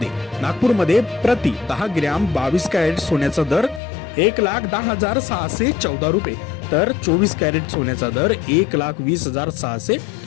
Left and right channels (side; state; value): right; drops out; at 3.8 s